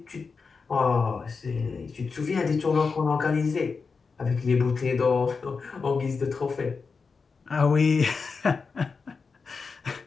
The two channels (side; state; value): right; quieter; 4.9 dB